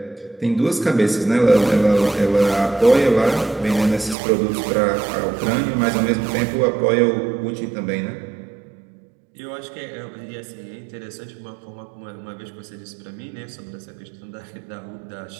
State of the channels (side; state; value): left; drops out; at 4.2 s